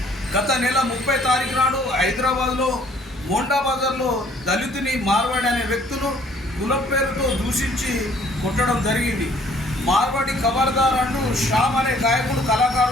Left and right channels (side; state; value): both; normal; correlation 0.59